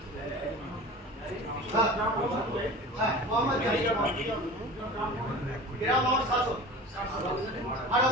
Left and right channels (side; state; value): both; normal; correlation 0.36